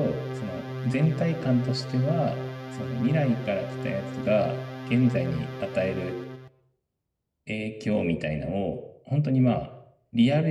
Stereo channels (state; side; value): identical; both; correlation 1.00